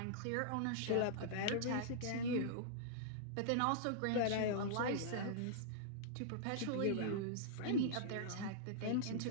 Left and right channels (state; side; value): different; both; correlation -0.02